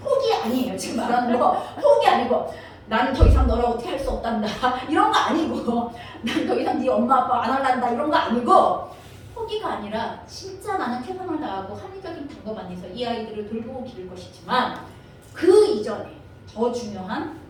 아니에요. 지금 말하는 거 포기 아니고 나는 더 이상 너랑 어떻게 할 수 없단다 이런 거 아니고 난 더 이상 네 엄마 아빠 안 할란다 이런 거 아니고 포기가 아니라 진짜 나는 최선을 다하고 합리적인 방법 안에서 이 아이들을 돌보고 기를 것이지만 그 이전에 더 중요한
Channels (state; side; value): identical; both; correlation 1.00